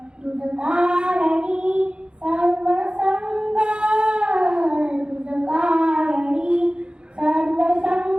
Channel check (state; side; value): late; left; 0.052 ms